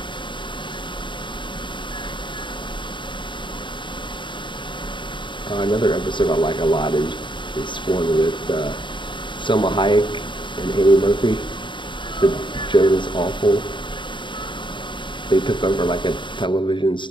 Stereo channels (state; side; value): late; right; 0.23 ms